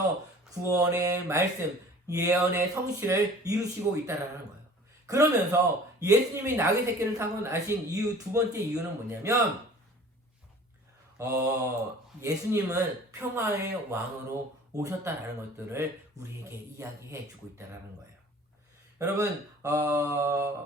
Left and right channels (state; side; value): normal; both; correlation 0.47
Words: 구원의 말씀, 예언의 성취를 이루시고 있다라는 거예요. 그러면서 예수님이 나귀 새끼를 타고 나신 이유, 두 번째 이유는 뭐냐면 예수님은 평화의 왕으로 오셨다라는 것들을 우리에게 이야기해 주고 있다라는 거예요. 여러분,